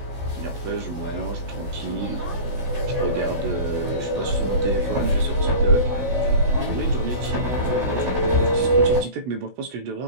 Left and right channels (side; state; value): left; late; 16 ms